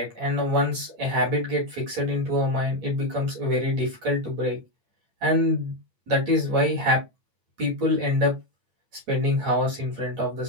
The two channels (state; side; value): late; left; 8.7 ms